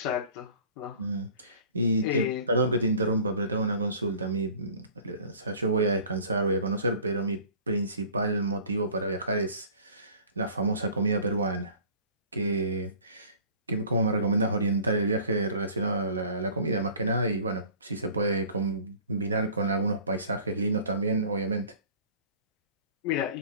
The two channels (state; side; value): inverted; both; correlation -0.48